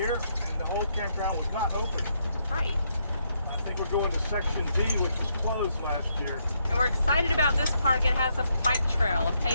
and the whole campground was not open. Right. I think we're going to Section D, which was closed last year. And we're excited about this park. It has a bike trail, a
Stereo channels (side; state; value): both; inverted; correlation -0.76